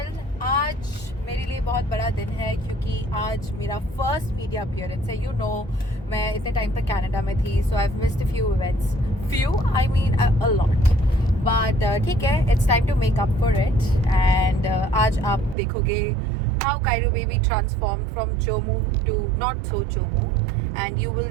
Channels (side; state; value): left; drops out; at 15.6 s